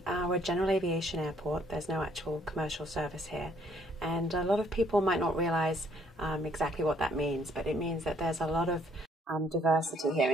we're a general aviation airport. There's no actual commercial service here. And a lot of people might not realize exactly what that means, but it means that there's a lot of diversity here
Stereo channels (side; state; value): both; normal; correlation 0.65